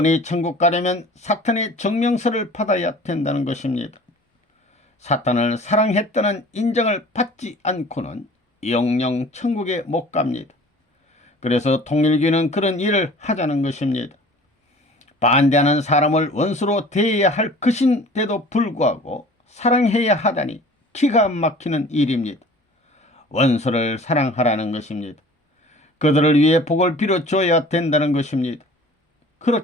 천국 가려면 사탄의 증명서를 받아야 된다는 것입니다. 사탄을 사랑했다는 인정을 받지 않고는 영영 천국에 못 갑니다. 그래서 통일교는 그런 일을 하자는 것입니다. 반대하는 사람을 원수로 대해야 할 것인데도 불구하고 사랑해야 하다니 기가 막히는 일입니다. 원수를 사랑하라는 것입니다. 그들을 위해 복을 빌어줘야 된다는 것입니다.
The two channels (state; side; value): normal; both; correlation 0.46